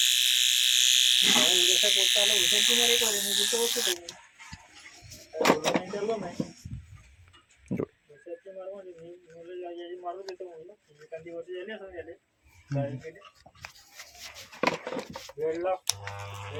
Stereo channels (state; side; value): identical; both; correlation 1.00